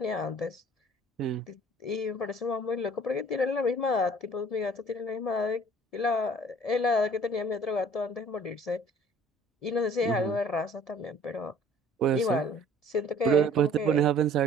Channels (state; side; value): normal; both; correlation 0.52